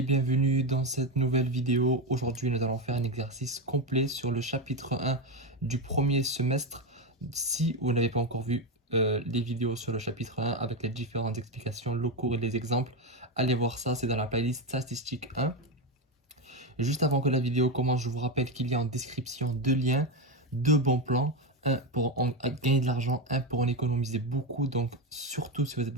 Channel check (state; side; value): normal; both; correlation 0.12